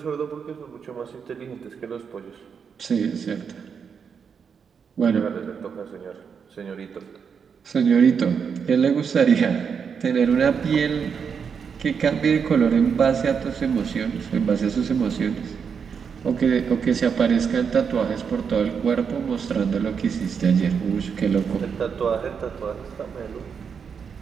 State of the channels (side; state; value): left; quieter; 6.5 dB